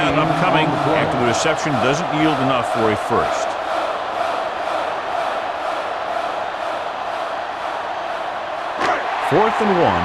upcoming after the reception doesn't yield enough for a first. Fourth and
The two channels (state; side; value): identical; both; correlation 1.00